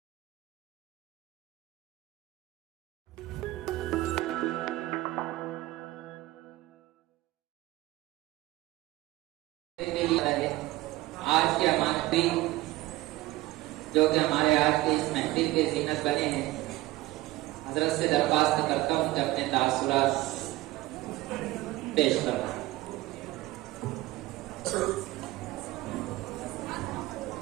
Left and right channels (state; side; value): quieter; left; 18.2 dB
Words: آج کے ہمارے جو کہ ہمارے آج کے اس محفل کے زینت بنے ہیں، حضرت سے درخواست کرتا ہوں کہ اپنے تاثرات پیش کریں۔